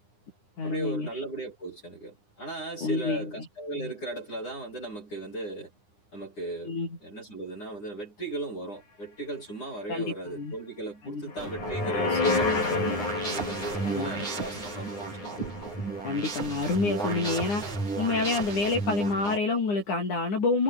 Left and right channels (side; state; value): right; late; 9.8 ms